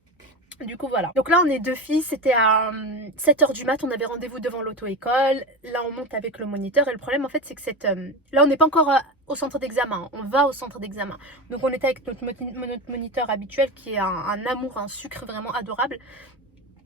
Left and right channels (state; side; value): normal; both; correlation 0.22